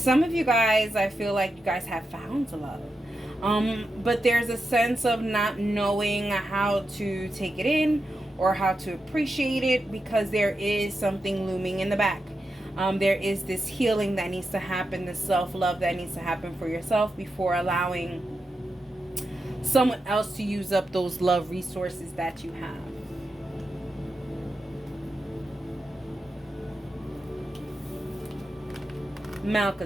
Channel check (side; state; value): both; normal; correlation 0.88